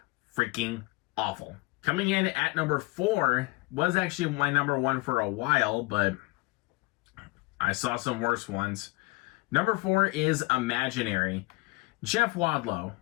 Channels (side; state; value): right; quieter; 23.8 dB